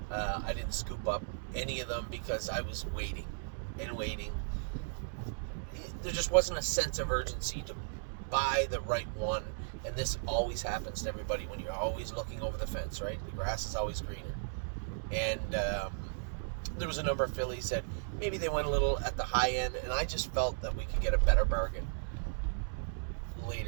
I didn't scoop up any of them because I was waiting and waiting. There just wasn't a sense of urgency to buy the right one, and this always happens to everybody when you're always looking over the fence, right? The grass is always greener. And there was a number of fillies that maybe they went a little at the high end, and I just felt that we could get a better bargain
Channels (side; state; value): left; silent; digital silence